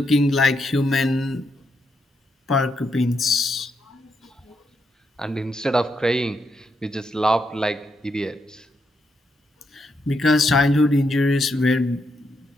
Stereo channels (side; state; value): both; normal; correlation 0.80